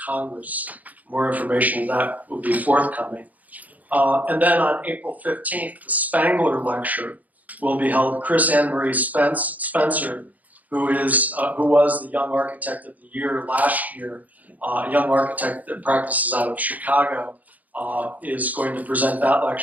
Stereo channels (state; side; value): late; left; 0.078 ms